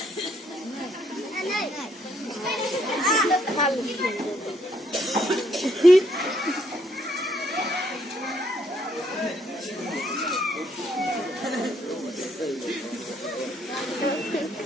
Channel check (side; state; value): both; normal; correlation 0.70